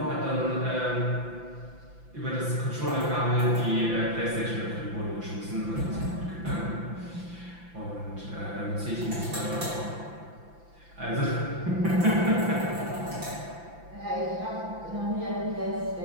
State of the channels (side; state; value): left; late; 5.9 ms